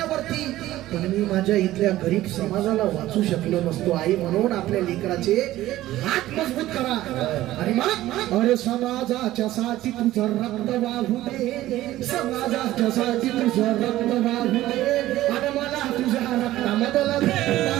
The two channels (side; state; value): left; quieter; 15.3 dB